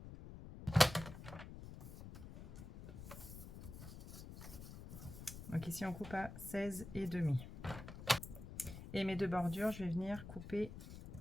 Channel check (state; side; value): noise; left; rumble, 11 dB below the sound